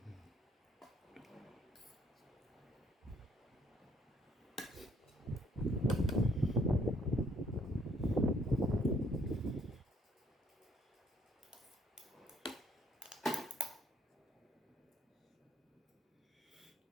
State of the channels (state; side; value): normal; both; correlation 0.66